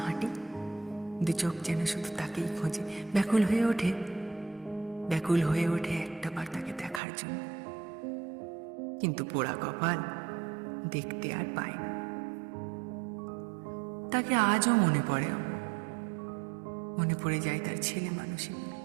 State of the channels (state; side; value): drops out; left; at 7.0 s